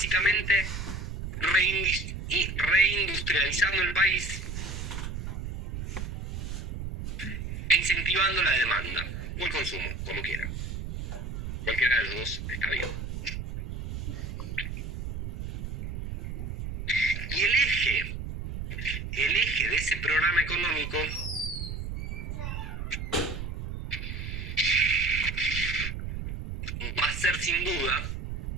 reindustrializando el país e incentivando la demanda o el consumo, como quieran. Cualquiera de los dos está bien. Y el eje de ese programa económico va a ser sin duda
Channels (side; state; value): right; noise; rumble, 6 dB below the sound